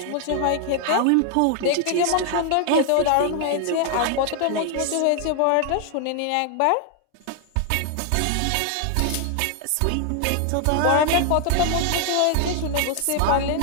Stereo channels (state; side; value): different; both; correlation 0.00